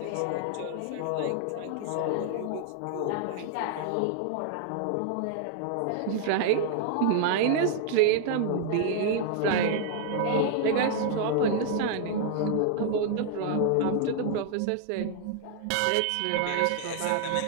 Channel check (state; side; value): different; both; correlation -0.01